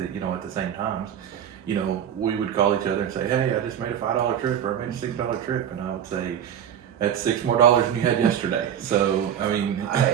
same times. You know, we would call each other and say, "Hey, I just made a $5 trip, or I made a $6 trip," and I would say, "That's $6 more than you had yesterday." So I mean,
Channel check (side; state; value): left; quieter; 9.4 dB